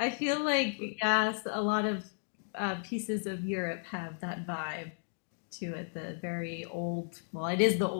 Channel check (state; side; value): silent; right; digital silence